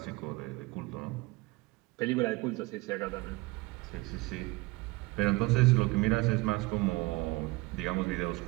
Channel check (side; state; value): left; quieter; 22.8 dB